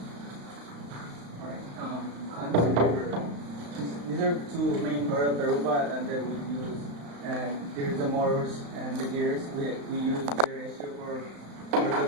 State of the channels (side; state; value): left; late; 35 ms